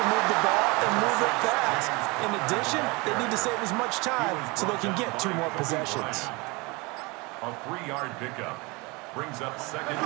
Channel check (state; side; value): quieter; left; 26.0 dB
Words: move the ball and move it fast. In addition, they need to save as much time so they can get 2 more possessions. A 3-yard pickup brings up 2nd